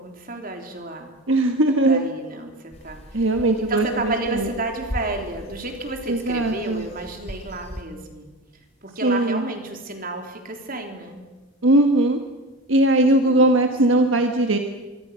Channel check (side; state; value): both; normal; correlation 0.29